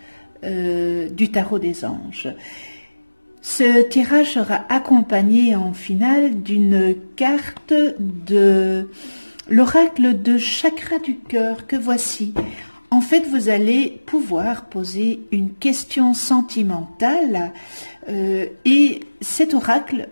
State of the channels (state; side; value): inverted; both; correlation -1.00